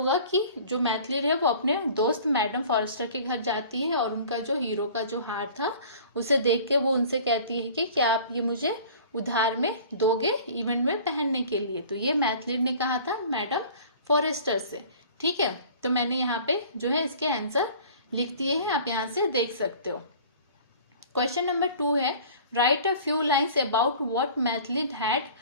कि जो मैथलीड है वो अपने दोस्त मैडम फॉरेस्टर के घर जाती है और उनका जो हीरो का जो हार था उसे देख के वो उनसे कहती है कि क्या आप ये मुझे उधार में दोगे इवेंट में पहनने के लिए। तो ये मैथलीड ने कहा था मैडम फॉरेस्टर से। ठीक है, तो मैंने यहाँ पे जो है इसके आंसर लिख दिए हैं, आप यहाँ से देख सकते हो। क्वेश्चन नंबर 2 है, write a few lines about what Mathilde had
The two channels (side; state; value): both; inverted; correlation -0.46